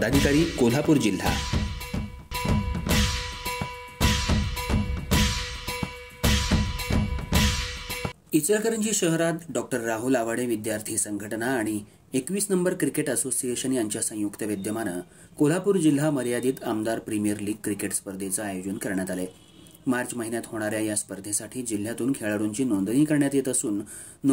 कोल्हापूर जिल्हा. इचलकरंजी शहरात डॉक्टर राहुल आवाडे विद्यार्थी संघटना आणि 21 नंबर क्रिकेट असोसिएशन यांच्या संयुक्त विद्यमानं कोल्हापूर जिल्हा मर्यादित आमदार प्रीमियर लीग क्रिकेट स्पर्धेचं आयोजन करण्यात आले. मार्च महिन्यात होणाऱ्या या स्पर्धेसाठी जिल्ह्यातून खेळाडूंची नोंदणी करण्यात येत असून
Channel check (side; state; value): both; identical; correlation 1.00